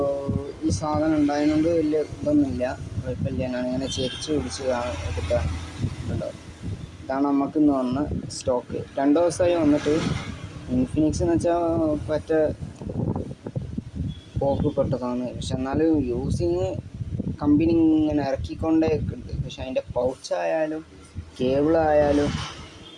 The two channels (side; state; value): both; identical; correlation 1.00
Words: ഈ സാധനം ഉണ്ടായതുകൊണ്ട് വലിയ ഇതൊന്നുമില്ല, കുഴപ്പമില്ല. ഞാനിങ്ങനെ ചെരിച്ച് പിടിച്ച് എടുക്കാൻ കണ്ടോ. ഇതാണ് നമുക്കിന്ന് വന്ന സ്റ്റോക്ക്. 2 ദിവസമായി വന്നിട്ട്. ഇൻഫിനിക്സ് എന്ന് വെച്ചാൽ പറ്റ പോക്ക് പെട്ടതാണ്. പക്ഷെ എന്നാലും യൂസിങ് കമ്പനി ഇങ്ങനെ ഇറക്കിക്കൊണ്ടേ ഉണ്ട്. പക്ഷെ അതിൻ്റെ പൗച്ചായാലും കേബിളായാലും